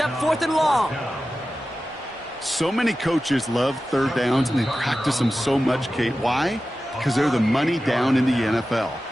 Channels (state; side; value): normal; both; correlation 0.94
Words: 4th and long. So many coaches love 3rd downs, and they practice them so much, Kate. Why? Because they're the money down in the NFL.